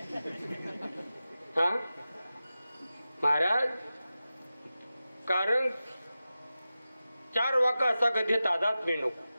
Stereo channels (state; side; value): inverted; both; correlation -0.94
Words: हा महाराज. कारण 4 वाका असा का देत आदात्म्य नको.